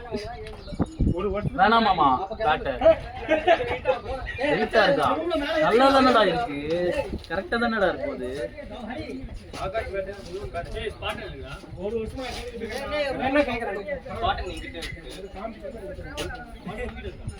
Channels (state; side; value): identical; both; correlation 1.00